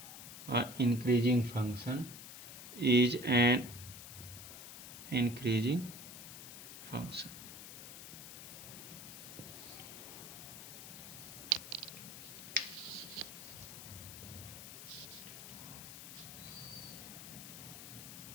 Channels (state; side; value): noise; left; hiss, 11 dB below the sound